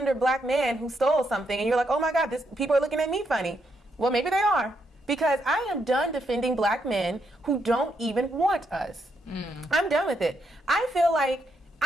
black man who stole something and you're like, oh my God, people are looking at me funny. Well, maybe they are. Because I am done defending black men who don't even want us. I'm done with it. I feel like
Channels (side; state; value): both; normal; correlation 0.78